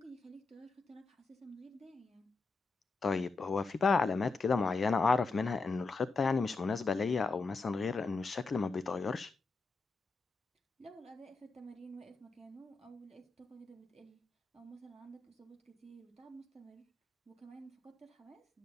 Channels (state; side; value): quieter; right; 4.1 dB